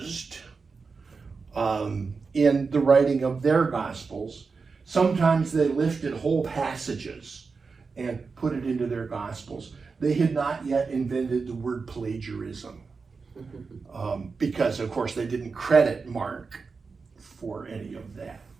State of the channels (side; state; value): left; quieter; 4.7 dB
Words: in the writing of their gospels. Sometimes they lifted whole passages and put it into their gospels. They had not yet invented the word plagiarism, because of course they didn't credit Mark for any of that.